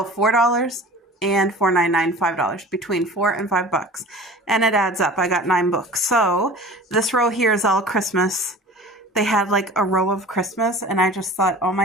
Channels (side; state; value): both; normal; correlation 0.41